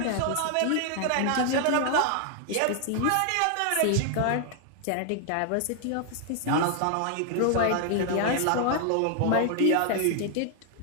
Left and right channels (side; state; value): both; different; correlation 0.00